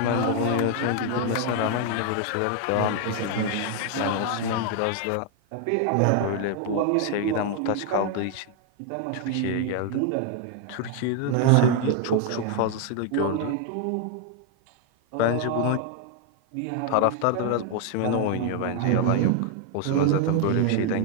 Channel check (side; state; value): both; different; correlation 0.00